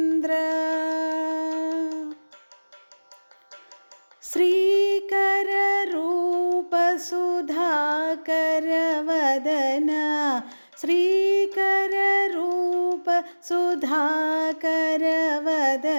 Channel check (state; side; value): inverted; both; correlation -1.00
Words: श्रीकर रूप सुधाकर वदन श्रीकर रूप सुधाकर